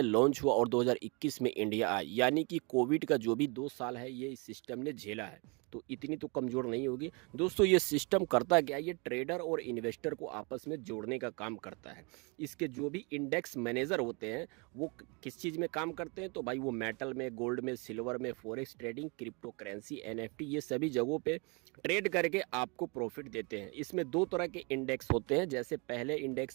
लॉन्च हुआ और 2021 में इंडिया आया, यानी कि कोविड का जो भी 2 साल है ये इस सिस्टम ने झेला है, तो इतनी तो कमज़ोर नहीं होगी। दोस्तों, ये सिस्टम करता क्या है, ये ट्रेडर और इन्वेस्टर को आपस में जोड़ने का काम करता है। इसके जो भी इंडेक्स मैनेजर होते हैं वो किस चीज़ में काम करते हैं, तो भाई वो मेटल में, गोल्ड में, सिल्वर में, forex trading, crypto currency, NFT, ये सभी जगहों पे ट्रेड करके आपको प्रॉफिट देते हैं। इसमें 2 तरह के इंडेक्स होते हैं, जैसे पहले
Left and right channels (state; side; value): quieter; left; 31.0 dB